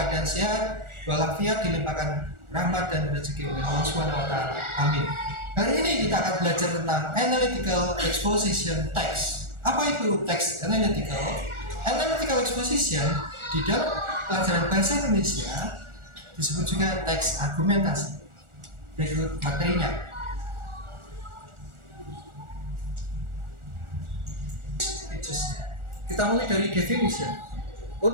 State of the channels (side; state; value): left; late; 1.4 ms